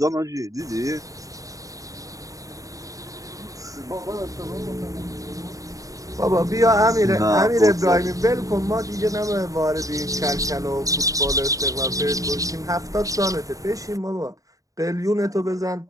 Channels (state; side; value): late; left; 0.16 ms